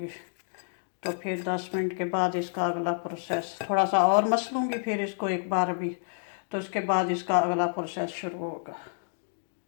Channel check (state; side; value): silent; right; digital silence